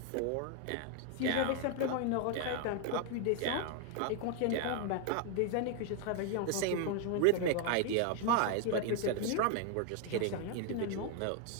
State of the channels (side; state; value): both; different; correlation 0.00